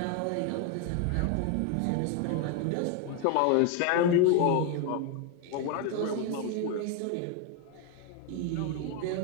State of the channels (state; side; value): different; both; correlation 0.01